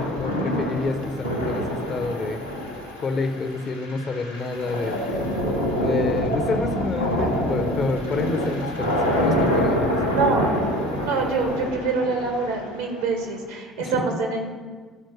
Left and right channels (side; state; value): both; normal; correlation 0.39